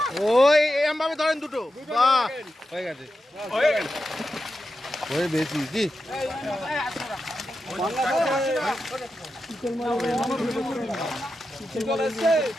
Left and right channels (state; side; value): normal; both; correlation 0.89